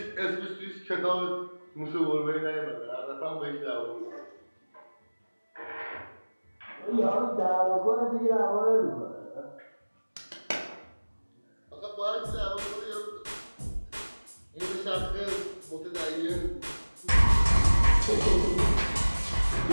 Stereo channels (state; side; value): inverted; both; correlation -1.00